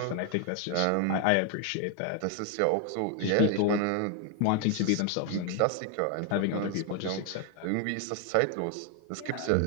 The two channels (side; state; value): both; different; correlation 0.00